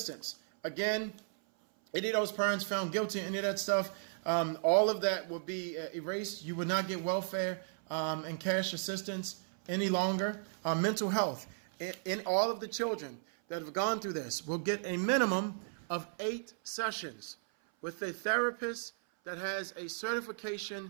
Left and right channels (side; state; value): left; silent; 54 dB below the other